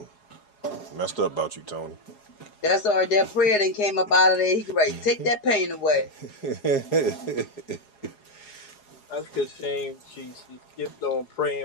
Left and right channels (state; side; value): late; right; 4.8 ms